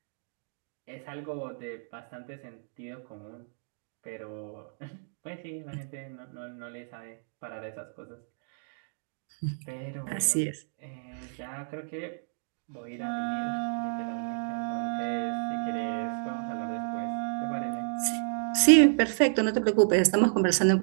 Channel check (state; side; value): silent; left; digital silence